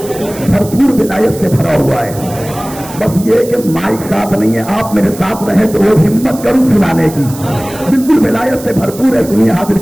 भरपूर विलायत से भरा हुआ है। बस ये कि माइक साथ नहीं है, आप मेरे साथ रहे तो वो हिम्मत करूं सुनाने की। बिल्कुल विलायत से भरपूर है। सुनिए, हाजिर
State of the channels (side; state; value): right; noise; hiss, 15 dB below the sound